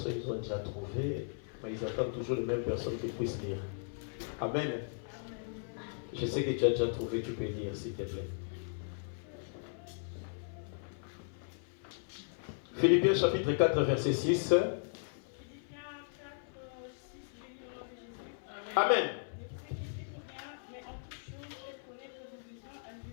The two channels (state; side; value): silent; right; 53 dB below the other